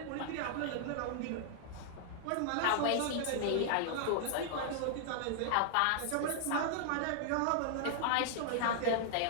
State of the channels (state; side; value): different; both; correlation -0.01